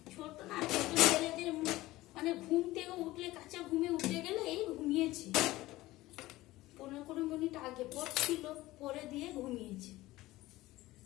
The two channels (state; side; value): quieter; right; 17.8 dB